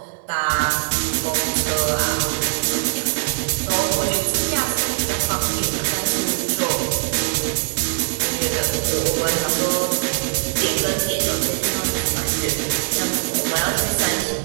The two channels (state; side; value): silent; left; 61 dB below the other